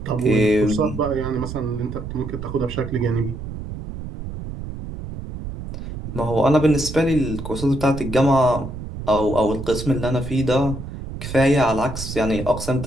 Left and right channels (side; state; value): right; noise; rumble, 9 dB below the sound